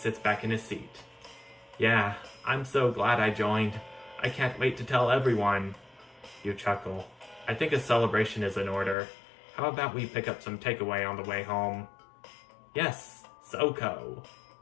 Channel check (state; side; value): drops out; right; at 9.0 s